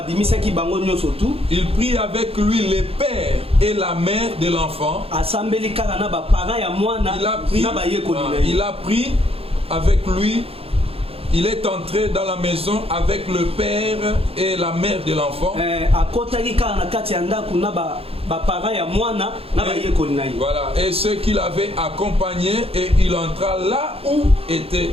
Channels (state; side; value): late; left; 0.28 ms